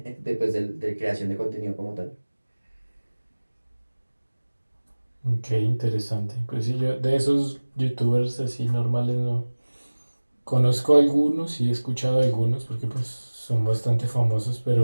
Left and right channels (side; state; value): both; inverted; correlation -1.00